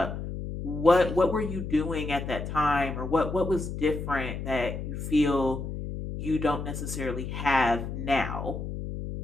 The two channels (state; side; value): noise; left; hum, 6 dB below the sound